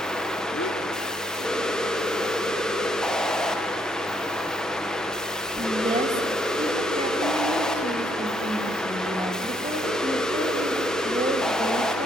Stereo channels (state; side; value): normal; both; correlation 0.71